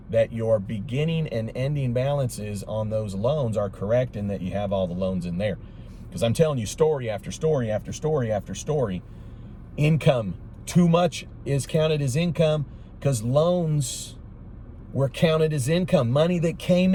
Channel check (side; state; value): both; identical; correlation 1.00